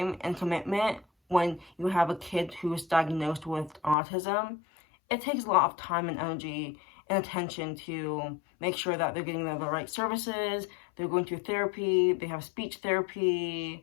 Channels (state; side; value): drops out; right; at 4.0 s